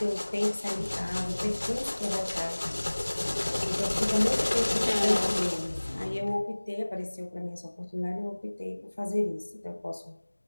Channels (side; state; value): both; inverted; correlation -1.00